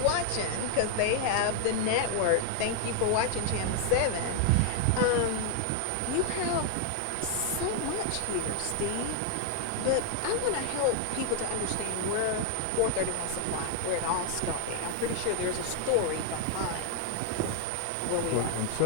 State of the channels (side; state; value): both; different; correlation 0.00